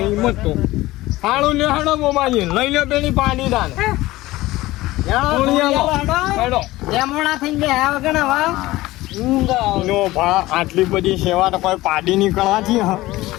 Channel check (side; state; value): right; quieter; 18.1 dB